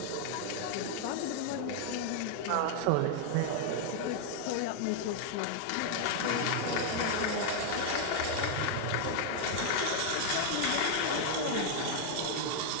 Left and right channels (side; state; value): both; different; correlation 0.00